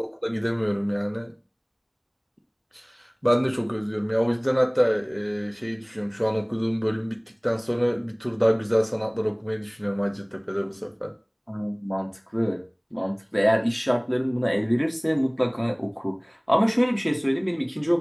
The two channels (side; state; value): both; identical; correlation 1.00